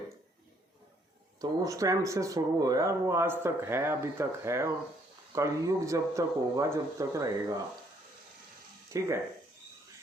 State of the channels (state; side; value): normal; both; correlation 0.67